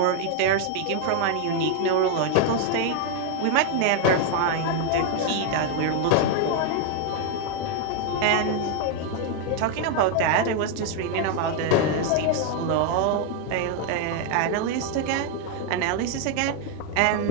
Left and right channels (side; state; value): both; different; correlation 0.00